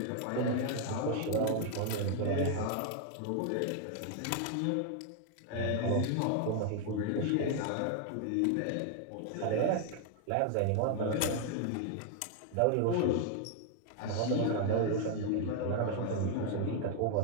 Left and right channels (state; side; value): different; both; correlation 0.00